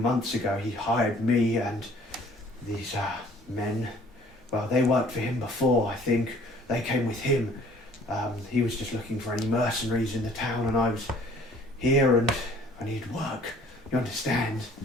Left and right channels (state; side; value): normal; both; correlation 0.55